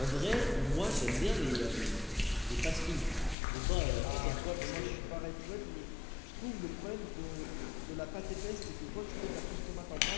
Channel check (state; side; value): drops out; right; at 3.4 s